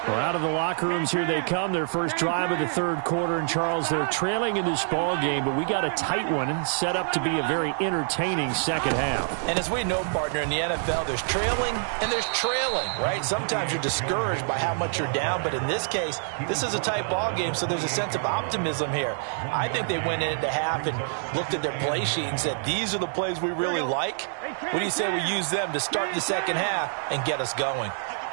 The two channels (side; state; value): left; silent; digital silence